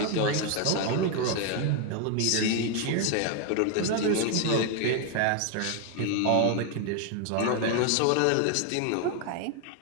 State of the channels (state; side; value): different; both; correlation 0.01